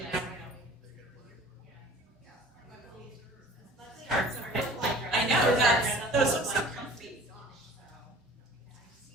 now I know, those look so comfy.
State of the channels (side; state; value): both; normal; correlation 0.46